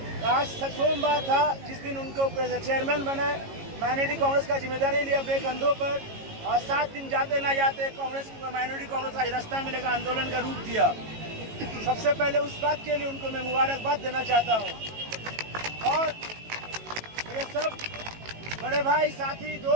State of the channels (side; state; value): left; late; 18 ms